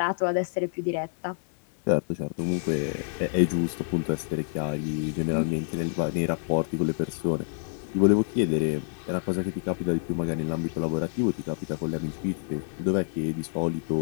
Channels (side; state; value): right; silent; 60 dB below the other